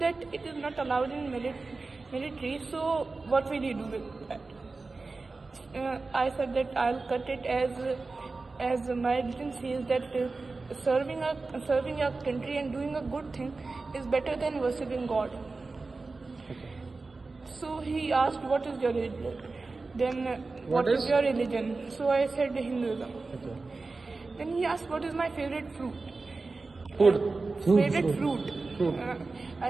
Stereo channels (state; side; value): quieter; left; 3.8 dB